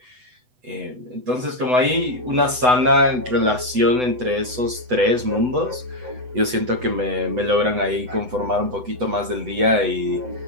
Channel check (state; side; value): late; left; 8.0 ms